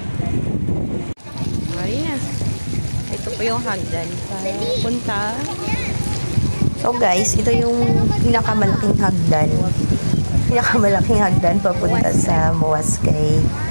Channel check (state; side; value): inverted; both; correlation -1.00